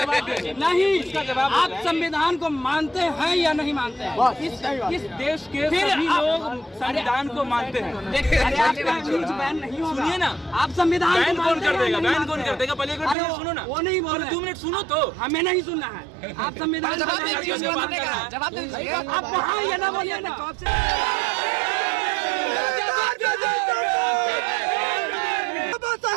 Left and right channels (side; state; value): left; drops out; at 13.2 s